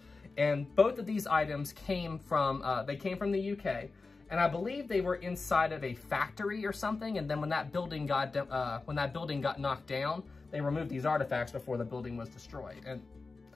And both of these items came from, the UK, and I believe they were inside of a factory or something, and then when that building got knocked down, they removed these artifacts before the building was destroyed. And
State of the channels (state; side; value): quieter; right; 3.9 dB